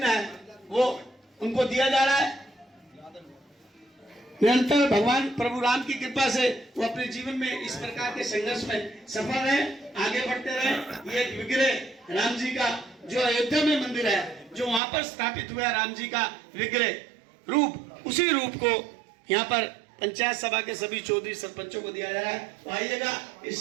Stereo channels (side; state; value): left; drops out; at 14.8 s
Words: है वो उनको दिया जा रहा है। निरंतर भगवान प्रभु राम की कृपा से वो अपने जीवन में इस प्रकार के संघर्ष में सफल रहे, आगे बढ़ते रहे। ये एक विग्रह राम जी का जो अयोध्या में मंदिर है, जो वहां पर स्थापित हुआ राम जी का विग्रह रूप, उसी रूप को यहाँ पर पंचायत सभा के सभी चौधरी सरपंचों को दिया जा रहा है। तो आइएगा इस